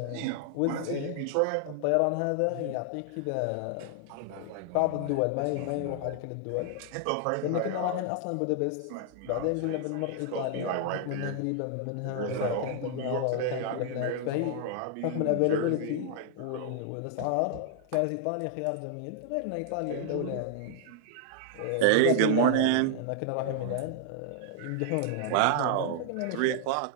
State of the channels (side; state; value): both; different; correlation 0.00